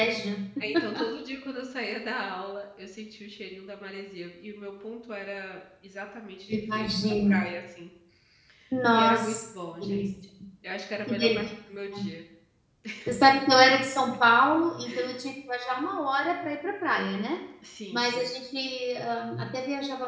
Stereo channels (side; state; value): both; identical; correlation 1.00